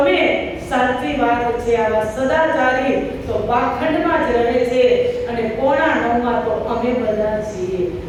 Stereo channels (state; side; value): identical; both; correlation 1.00